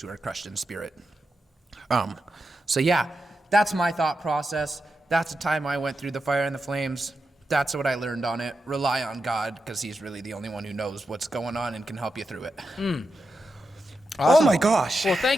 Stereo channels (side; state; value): both; normal; correlation 0.88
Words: who are crushed in spirit. So yeah, that's my thought process. That's the time I went through the fire and the flames. That's what I learned on it. Rely on God, because he's really the only one who knows what's going on and can help you through it. Awesome. Oh my gosh. Well,